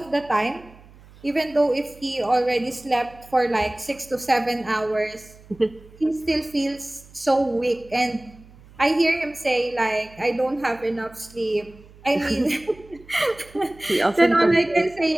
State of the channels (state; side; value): noise; right; hum, 23 dB below the sound